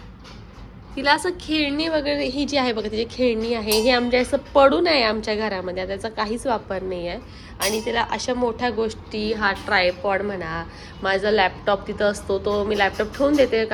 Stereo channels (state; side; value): identical; both; correlation 1.00